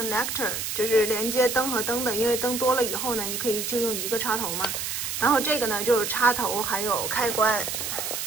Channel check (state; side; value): noise; right; hiss, 3 dB below the sound